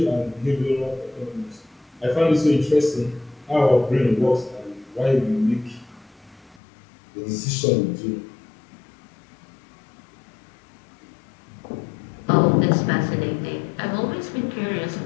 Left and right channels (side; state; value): right; drops out; at 6.6 s